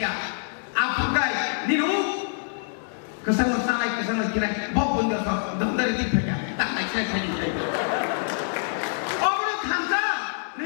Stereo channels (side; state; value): right; silent; 61 dB below the other